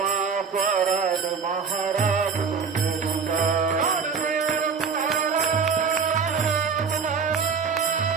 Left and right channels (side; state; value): left; quieter; 5.8 dB